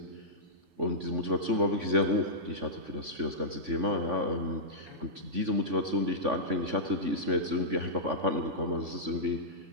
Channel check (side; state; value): left; late; 3.5 ms